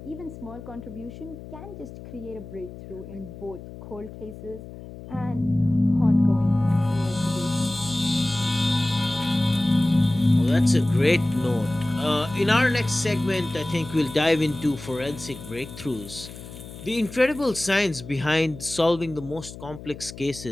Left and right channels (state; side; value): noise; left; hum, 14 dB below the sound